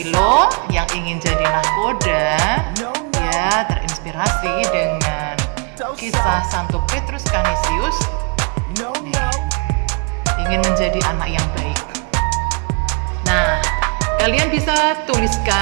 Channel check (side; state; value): left; quieter; 36.6 dB